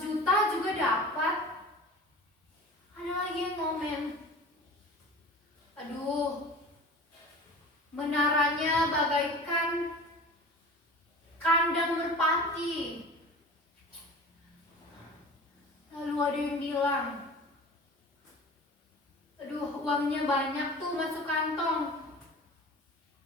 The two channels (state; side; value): normal; both; correlation 0.38